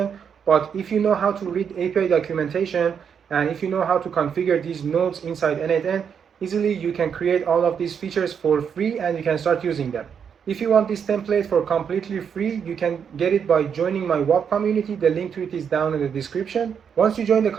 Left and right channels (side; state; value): left; quieter; 7.3 dB